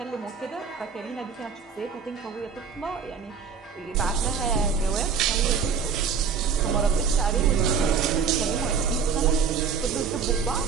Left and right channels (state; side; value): quieter; left; 6.1 dB